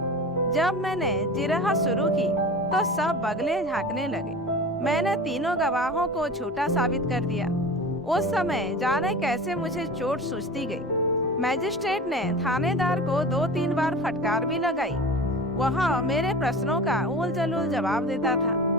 जब मैंने जिरह शुरू की तो सब बगले झांकने लगे। मैंने तीनों गवाहों को झूठा साबित कर दिया। उस समय जाने कैसे मुझे चोट सूझती गई। मजिस्ट्रेट ने थानेदार को 2-3 बार फटकार भी लगाई। वह मेरे प्रश्नों का उल जलूल जवाब देता था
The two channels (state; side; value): normal; both; correlation 0.34